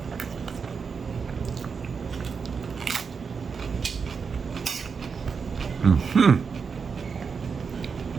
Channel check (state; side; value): quieter; left; 5.6 dB